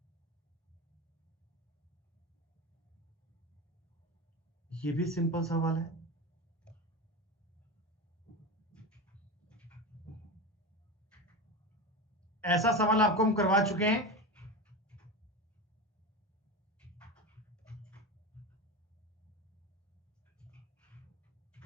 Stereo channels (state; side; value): normal; both; correlation 0.23